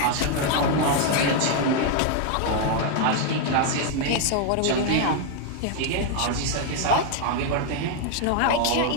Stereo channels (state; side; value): different; both; correlation 0.00